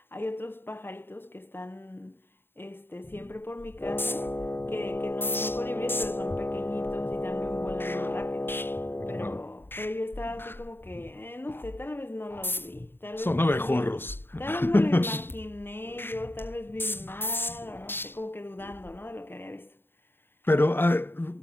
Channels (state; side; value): late; right; 0.10 ms